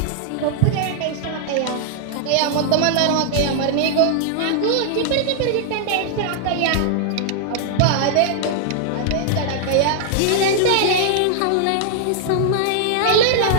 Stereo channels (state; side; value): different; both; correlation -0.01